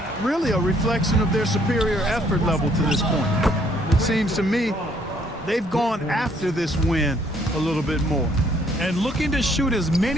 really a reflection of their superior effort level to this point. It seems to me they've gone after this win a little bit more. And looking to shoot as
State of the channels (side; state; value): both; normal; correlation 0.65